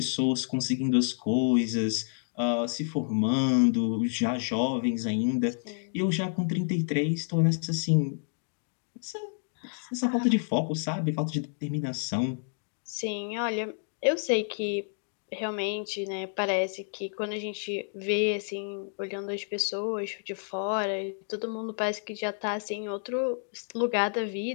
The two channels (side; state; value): right; silent; digital silence